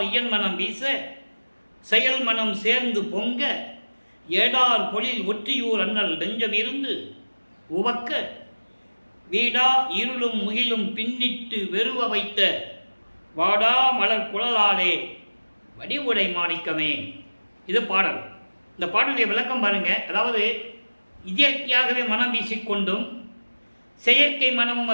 இயன் மனம் வீச, செயல் மனம் சேர்ந்து பொங்க, ஏடார் பொழில் ஒற்றியூர் அண்ணல் நெஞ்சம் இருந்து உவக்க, வீடா இருளும் முகிலும் பின்னிட்டு வெறுவ வைத்த வாடா மலர் குழலாலே வடிவுடை மாணிக்கமே. இது பாடல். இந்த பாடலுடைய விளக்கம் பாருங்க. அதாவது இயற்கையாகவே மனம் வீசிக்கொண்டும் செயற்கை மனமும்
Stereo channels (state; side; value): inverted; both; correlation -1.00